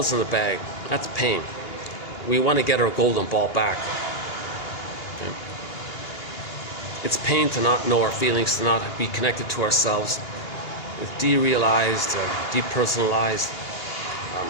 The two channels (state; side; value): late; right; 2.8 ms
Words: in the bag, that's pain. We want to get our golden ball back. Okay. It's pain to not know our feelings, to not be connected to ourselves. It's derealized, depersonalized,